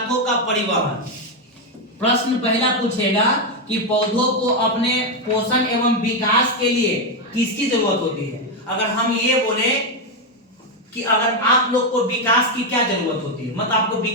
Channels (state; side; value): normal; both; correlation 0.05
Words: का परिवहन। प्रश्न पहला पूछेगा कि पौधों को अपने पोषण एवं विकास के लिए किसकी जरूरत होती है। अगर हम ये बोले कि अगर आप लोग को विकास की क्या जरूरत होती है, मतलब आपको